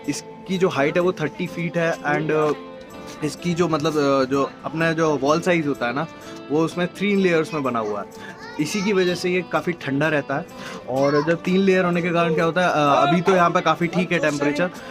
जो हाइट है वो 30 फीट है, एंड इसकी जो मतलब जो अपना जो वॉल साइज़ होता है ना, वो उसमें 3 लेयर्स में बना हुआ है। इसी की वजह से ये काफ़ी ठंडा रहता है। और जब 3 लेयर होने के कारण क्या होता है, अभी तो यहाँ पे काफ़ी ठीक है टेम्परेचर,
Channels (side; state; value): both; identical; correlation 1.00